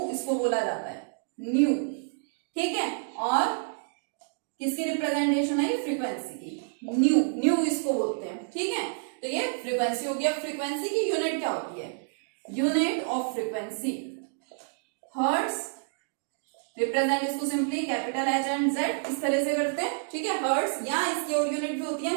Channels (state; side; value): silent; left; digital silence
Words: इसको बोला जाता है, न्यू। ठीक है, और किसकी रिप्रेजेंटेशन है, फ्रीक्वेंसी की, न्यू इसको बोलते हैं। ठीक है, तो ये फ्रीक्वेंसी हो गया। फ्रीक्वेंसी की यूनिट क्या होती है, unit of frequency hertz. Represent इसको simply capital H and Z इस तरह से करते हैं। ठीक है, हर्ट्ज, या इसकी और यूनिट भी होती है,